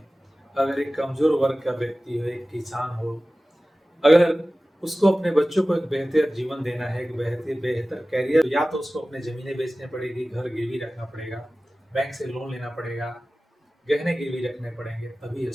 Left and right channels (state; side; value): normal; both; correlation 0.96